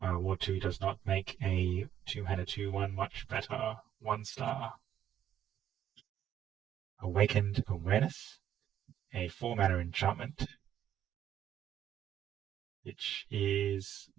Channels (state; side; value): quieter; left; 10.5 dB